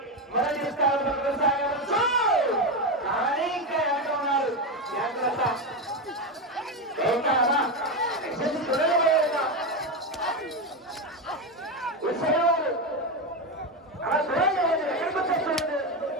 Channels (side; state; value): both; normal; correlation 0.12